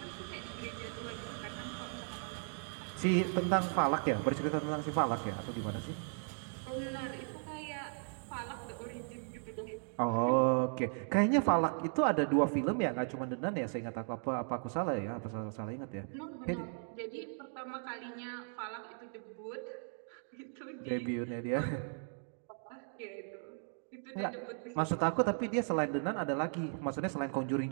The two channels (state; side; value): silent; left; 53 dB below the other